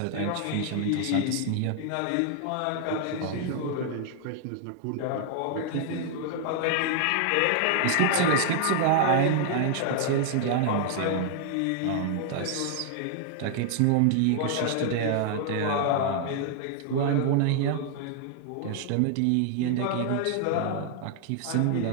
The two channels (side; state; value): both; different; correlation 0.00